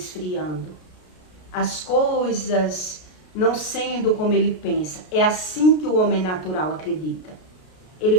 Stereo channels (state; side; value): late; right; 33 ms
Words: As coisas não sendo como ele pensa. É assim que o homem natural acredita. Ele